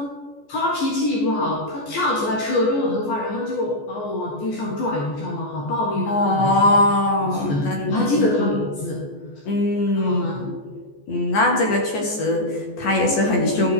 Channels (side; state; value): right; late; 14 ms